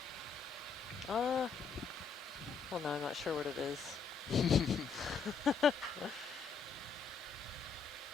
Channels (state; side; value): quieter; right; 5.5 dB